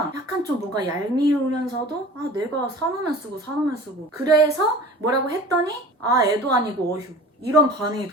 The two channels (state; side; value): normal; both; correlation 0.41